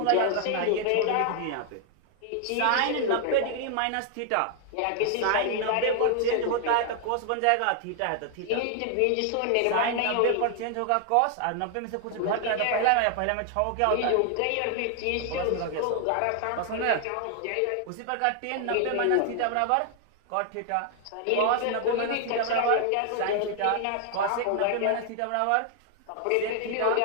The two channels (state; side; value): different; both; correlation 0.00